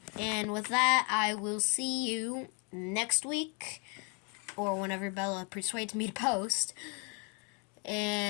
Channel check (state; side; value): quieter; right; 35.5 dB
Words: And with that, I will see you next week, or whenever Bella persuades me to post.